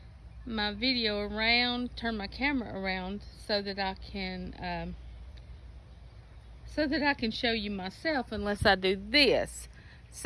video around, turn my camera around so that I can show you myself unless I do this.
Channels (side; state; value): both; identical; correlation 1.00